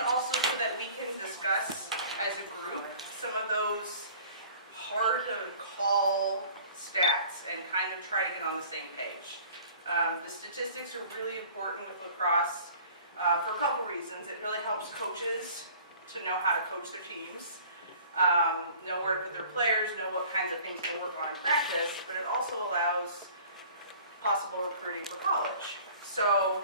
also so that we can discuss as a group some of those hard to call stats and kind of try to get on the same page. The statistics are really important with lacrosse for a couple reasons. It really helps coaches to know how to coach their teams, know where to put their players, know what kinds of things to work on in practice, but it also allows possible recruiting for college. So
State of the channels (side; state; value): both; inverted; correlation -0.48